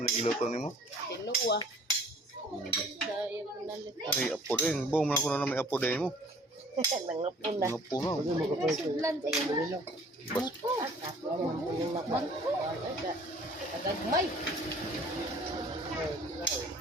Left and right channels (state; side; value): normal; both; correlation 0.52